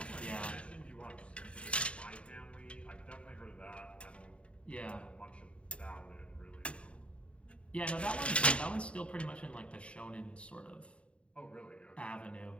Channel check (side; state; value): right; late; 0.060 ms